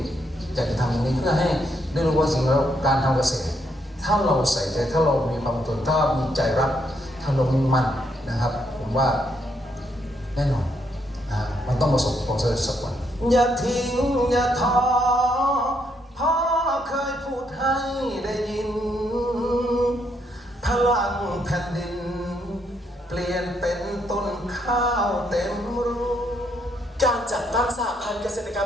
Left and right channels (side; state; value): both; normal; correlation 0.75